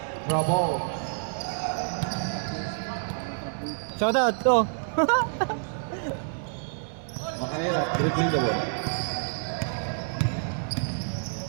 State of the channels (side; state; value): left; silent; 57 dB below the other